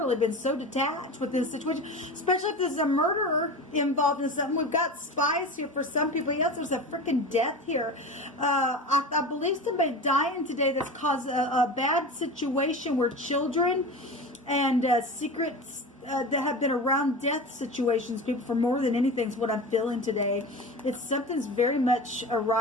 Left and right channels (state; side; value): normal; both; correlation 0.30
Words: been so detached with this situation, especially if there's a murderer involved in something. We've got spies here for some people. Yes, there's a freaking death here. I believe somebody dying today that's caused a bad situation where children and secrets that have been around death situations, people, for more than anything is what I'm feeling today. It's something's very much